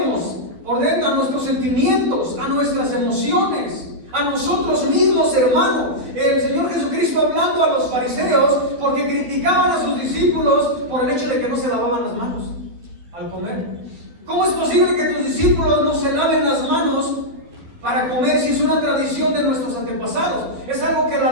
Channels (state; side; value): late; left; 12 ms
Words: por dentro, a nuestros sentimientos, a nuestras emociones, a nosotros mismos, hermano. El Señor Jesucristo hablando a los fariseos porque criticaban a sus discípulos por el hecho de que no se lavaban las manos al comer. ¿Cómo es posible que tus discípulos no se laven las manos para comer si es una tradición de nuestros antepasados? Es algo que la